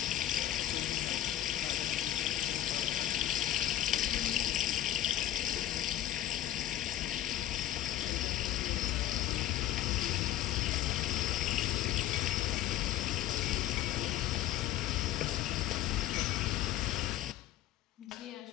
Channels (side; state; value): right; quieter; 13.2 dB